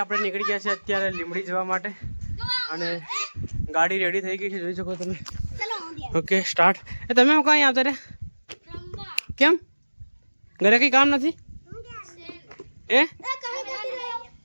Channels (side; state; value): both; inverted; correlation -1.00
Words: આપણે નીકળી ગયા છે અત્યારે લીમડી જવા માટે અને ગાડી રેડી થઈ ગઈ છે જોઈ શકો તમે ઓકે સ્ટાર્ટ એ તમે હું કાંઈ આવતા રે કેમ ઘરે કંઈ કામ નથી એ